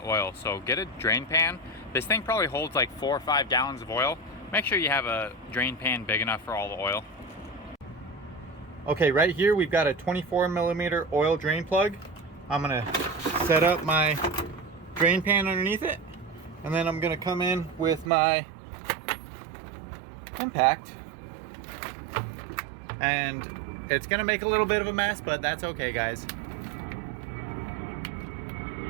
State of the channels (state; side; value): drops out; left; at 18.1 s